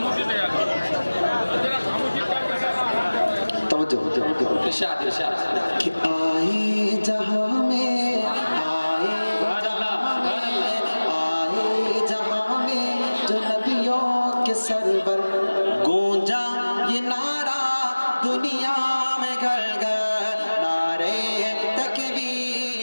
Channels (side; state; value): both; inverted; correlation -1.00